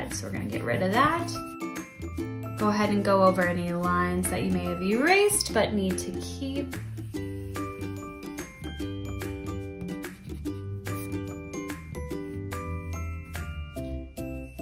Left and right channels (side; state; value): both; identical; correlation 1.00